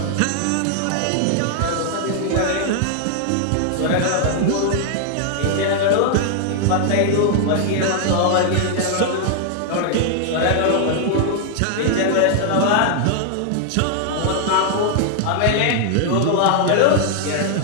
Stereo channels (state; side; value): different; both; correlation 0.00